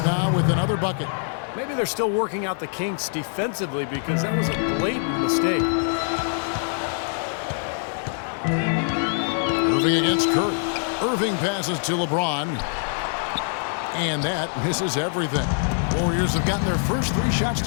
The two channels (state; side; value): silent; right; 62 dB below the other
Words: now with another bucket. Maybe they're still working out the kinks defensively because that was a blatant mistake. Irving against Curry. Irving passes to LeBron. And that misses everything. Warriors have gotten their first 3 shots